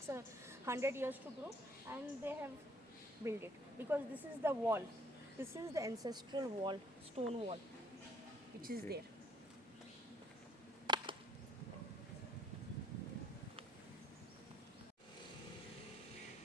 100 years to grow, and they have built it because this is the wall. This is the ancestral wall, stone wall, which is there.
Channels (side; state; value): both; normal; correlation 0.63